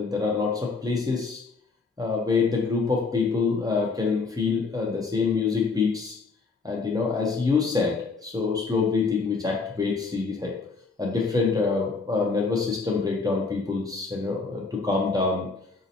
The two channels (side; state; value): right; quieter; 4.3 dB